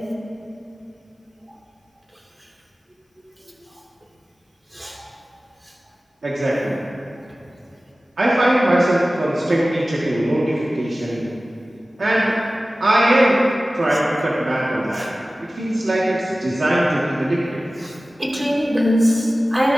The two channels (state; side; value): normal; both; correlation 0.97